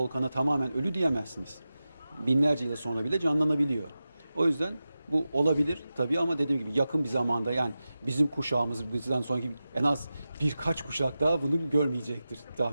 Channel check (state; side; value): inverted; both; correlation -0.94